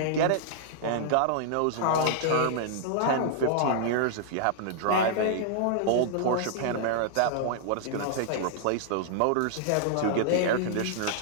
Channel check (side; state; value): both; different; correlation -0.01